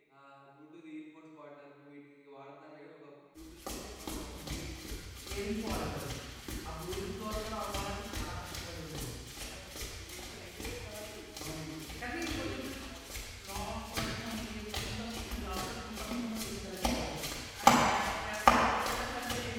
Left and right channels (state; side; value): identical; both; correlation 1.00